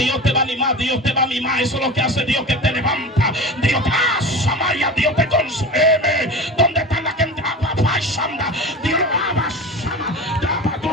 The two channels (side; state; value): both; normal; correlation 0.31